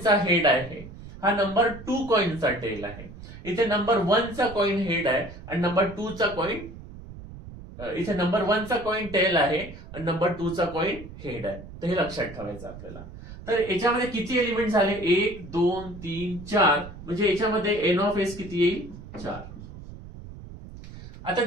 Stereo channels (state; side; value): noise; right; rumble, 14 dB below the sound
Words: हेड आहे, हा नंबर 2 कॉइनचा टेल आहे. इथे नंबर 1 चा कॉइन हेड आहे आणि नंबर 2 चा कॉइन, इथे नंबर 1 चा कॉइन टेल आहे आणि नंबर 2 चा कॉइन हेड आहे. तर हे लक्षात ठेवायचं आपल्याला. तर याच्यामध्ये किती एलिमेंट झाले, 1 2 3 4, म्हणजे याच्यामध्ये एन ऑफ एस किती येईल, 4. आता